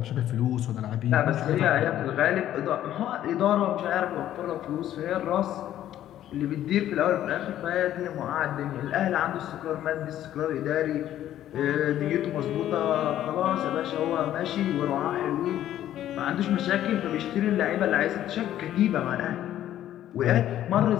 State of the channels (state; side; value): quieter; right; 12.1 dB